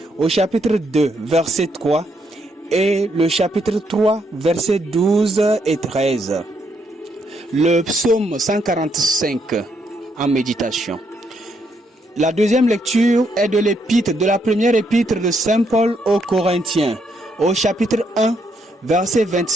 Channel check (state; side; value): normal; both; correlation 0.75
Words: au chapitre 2, verset 3 et le chapitre 3, versets 12 et 13. Le psaume 145 en méditation. La deuxième lecture est de la première épître de Saint Paul aux Corinthiens, au chapitre 1, versets